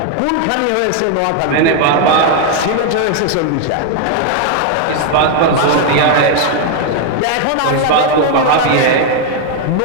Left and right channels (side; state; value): both; different; correlation 0.00